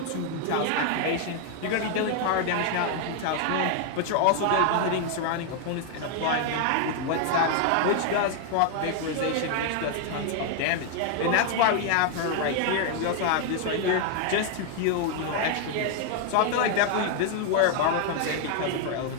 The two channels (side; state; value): both; different; correlation 0.00